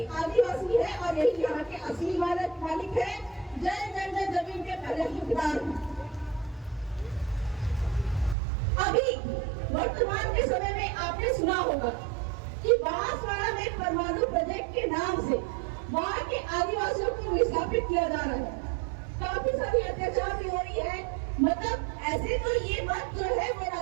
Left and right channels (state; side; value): drops out; left; at 8.3 s